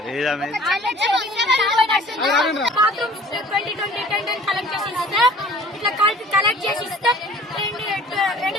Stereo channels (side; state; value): both; normal; correlation 0.49